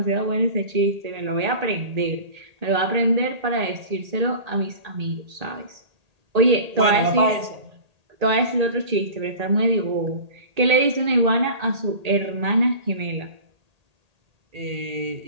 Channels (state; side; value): late; left; 1.8 ms